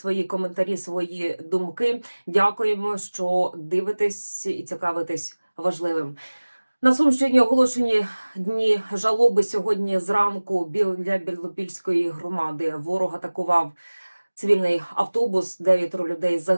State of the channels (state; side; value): inverted; both; correlation -1.00